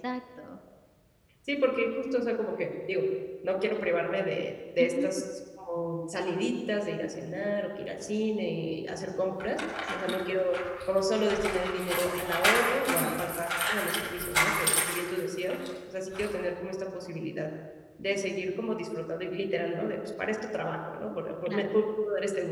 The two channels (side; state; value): both; identical; correlation 1.00